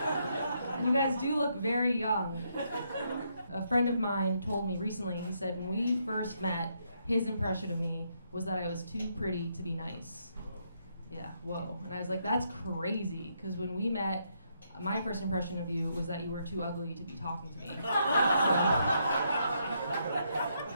you guys do look very young. A friend of mine told me recently, he said when we first met, his impression of me was that I was too pretty to be nice. Yeah, whoa. And I was like, that's crazy, because when we met, my first impression of you was that you were too ugly to be talking to me. So,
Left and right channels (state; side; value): inverted; both; correlation -0.76